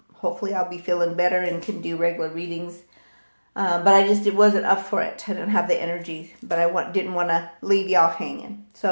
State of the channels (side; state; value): both; inverted; correlation -1.00